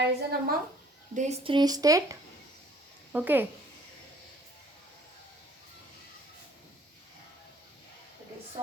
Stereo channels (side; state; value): both; normal; correlation 0.57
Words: among these three states. Okay, it is